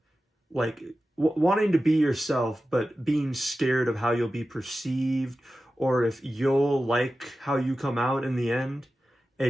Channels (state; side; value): normal; both; correlation 0.94